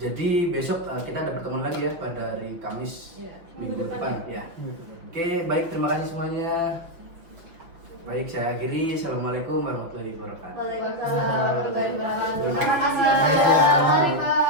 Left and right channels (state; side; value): late; left; 6.2 ms